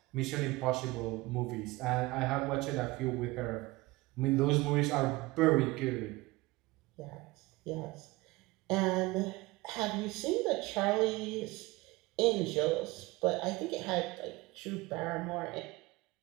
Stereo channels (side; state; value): left; quieter; 21.4 dB